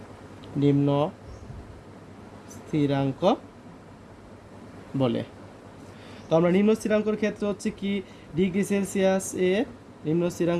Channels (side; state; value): both; identical; correlation 1.00